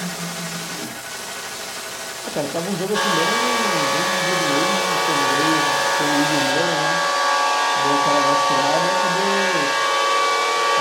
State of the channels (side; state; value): both; identical; correlation 1.00